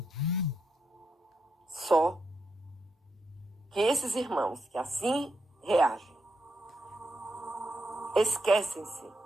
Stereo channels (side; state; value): both; normal; correlation 0.83